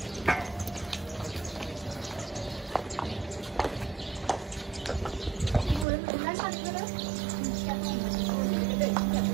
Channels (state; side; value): drops out; left; at 5.9 s